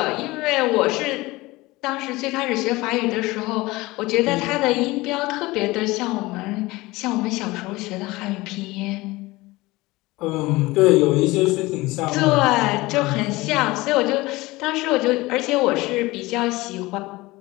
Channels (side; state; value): right; quieter; 20.7 dB